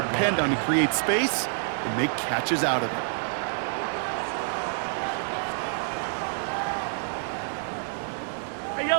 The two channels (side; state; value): left; silent; 56 dB below the other